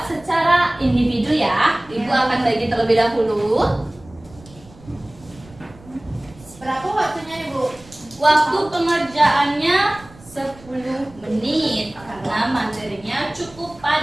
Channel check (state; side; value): noise; right; rumble, 23 dB below the sound